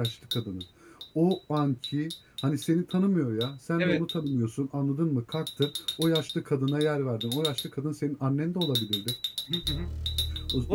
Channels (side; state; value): both; identical; correlation 1.00